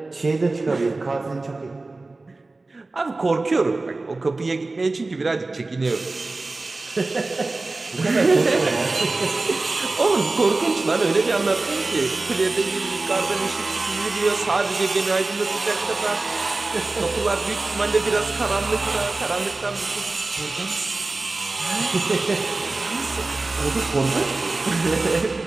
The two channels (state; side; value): quieter; left; 3.3 dB